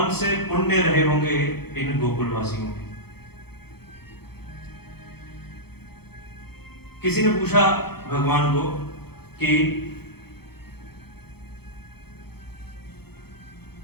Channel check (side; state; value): right; late; 0.96 ms